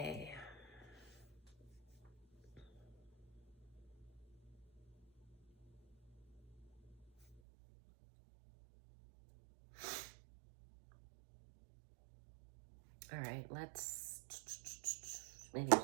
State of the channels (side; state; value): left; drops out; at 7.4 s